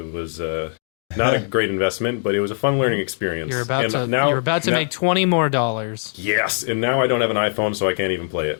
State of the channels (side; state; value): right; silent; digital silence